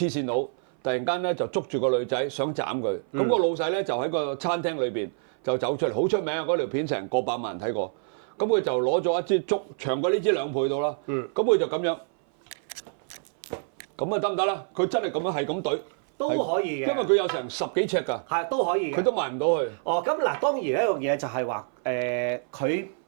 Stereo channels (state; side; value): silent; left; 58 dB below the other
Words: 線佬，突然間咧就捉住個女仔想斬佢，咁個老細咧就喺個餐廳裏邊就走出嚟，好出名啊！嗰條片成過百萬人睇過。咁佢就攞咗一支竹，長過呢支2倍到啦。咁佢就咁樣，咁啊得唔得啦？佢真係咁樣係咁懟都可以嘅，因為佢有成10幾尺㗎。係都可以嘅，佢都埋唔到去。哦，咁嗱，當然一樣嘢就係話佢